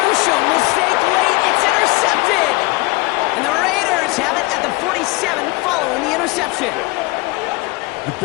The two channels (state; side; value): quieter; right; 23.6 dB